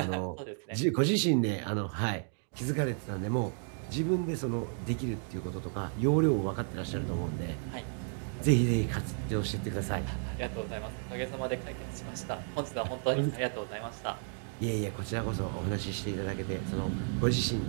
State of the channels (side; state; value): left; silent; 56 dB below the other